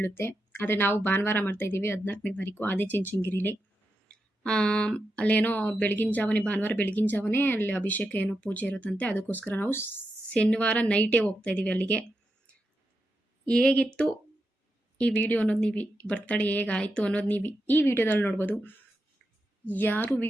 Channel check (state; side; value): normal; both; correlation 0.87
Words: ಆದರೆ ನಾವು ಭಾನುವಾರ ಮಾಡ್ತಾಯಿದ್ದೀವಿ 14ನೇ ತಾರೀಕು ಆದಿಚುಂಚನಗಿರಿಲಿ. ಅಲ್ಲೇನೋ ಭಾನುವಾರ ಬೆಳಗಿನ ಜಾವನೇ ಅಲ್ಲಿ ಅಭಿಷೇಕ ಏನೋ ಪೂಜೆ ಇರುತ್ತಂತೆ. ಅದಕ್ಕೋಸ್ಕರ ನಾವು ಶನಿವಾರ ನೈಟೇ ಹೋಗ್ತಾಯಿದ್ದೀವಿ ಅಲ್ಲಿಗೆ. ಹೇಗಿತ್ತು ಈ ವಿಡಿಯೋ ಅನ್ನೋದು ನೀವು ಬರ್ತಡೇ ಹೇಗಾಯಿತು ಅನ್ನೋದು ನೀವು ಈ ವಿಡಿಯೋದಲ್ಲಿ ನೋಡ್ಬೋದು. ಯಾರು